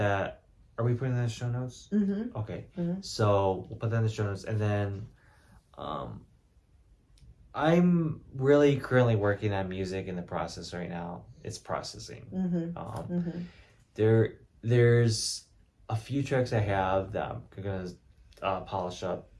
Are we putting that in the show notes? Mm-hmm. Okay. Mm-hmm. So we'll put that in the show notes, and then um, I'm really currently working on music in the process right now. It's processing. Mm-hmm. Mm-hmm. There's a few tracks I have that I'm gonna polish up.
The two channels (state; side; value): identical; both; correlation 1.00